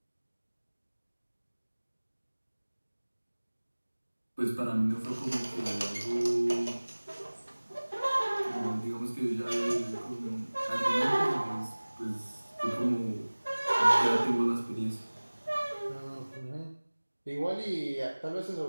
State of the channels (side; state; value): both; inverted; correlation -1.00